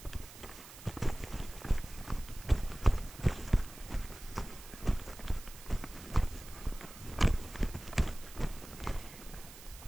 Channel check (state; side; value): noise; right; hiss, 16 dB below the sound